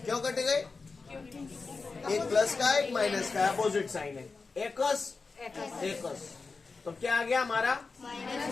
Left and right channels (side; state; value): right; quieter; 4.3 dB